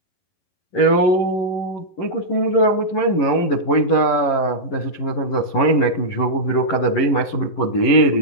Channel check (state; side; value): late; right; 11 ms